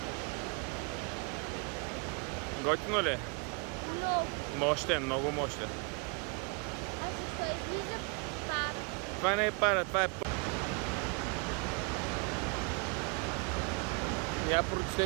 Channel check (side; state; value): left; quieter; 33.0 dB